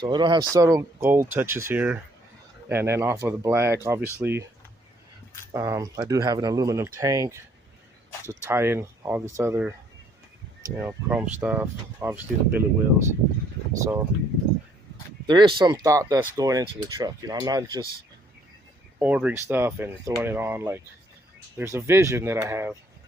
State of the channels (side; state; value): both; normal; correlation 0.64